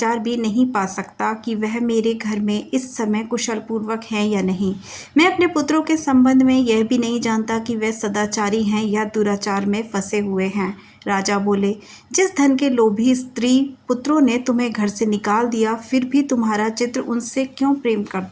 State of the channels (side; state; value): both; identical; correlation 1.00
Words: भी नहीं पा सकता कि वह मेरे घर में इस समय कुशल पूर्वक हैं या नहीं। मैं अपने पुत्रों के संबंध में यह भी नहीं जानता कि वे सदाचारी हैं या दुराचार में फंसे हुए हैं। राजा बोले, जिस धन के लोभी स्त्री पुत्रों ने तुम्हें घर से निकाल दिया, फिर भी तुम्हारा चित्र उनसे क्यों प्रेम